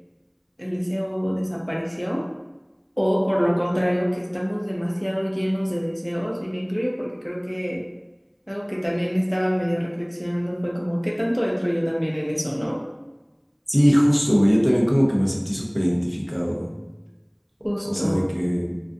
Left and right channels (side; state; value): both; identical; correlation 1.00